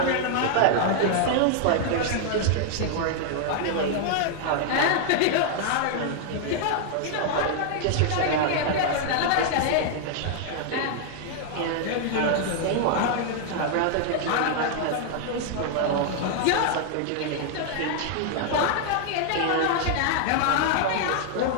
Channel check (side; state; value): both; different; correlation 0.00